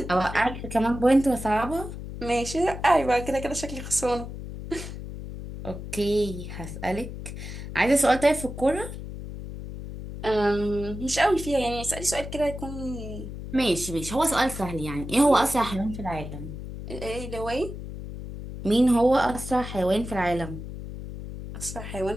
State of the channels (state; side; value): noise; left; hum, 9 dB below the sound